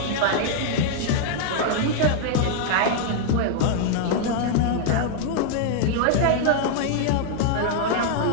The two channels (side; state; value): both; different; correlation -0.01